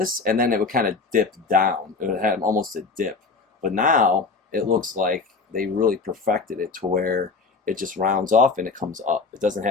and then it would kind of dip down. It would have almost a dip. But now it looks like they really perfected it to where it just rounds off and it comes up. It doesn't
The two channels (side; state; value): right; quieter; 4.3 dB